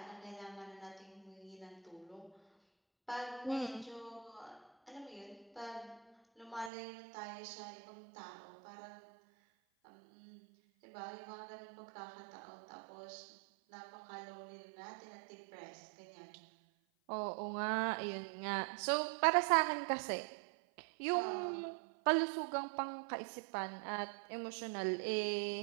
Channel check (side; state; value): left; drops out; at 6.7 s